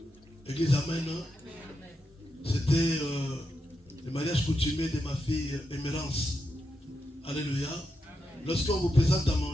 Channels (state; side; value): normal; both; correlation 0.85